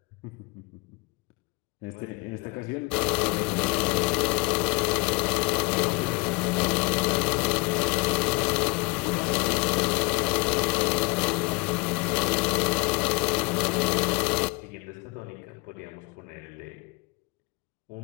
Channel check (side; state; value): right; quieter; 26.2 dB